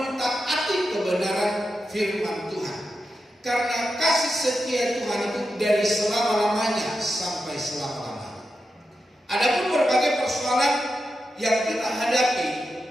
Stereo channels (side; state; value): both; normal; correlation 0.89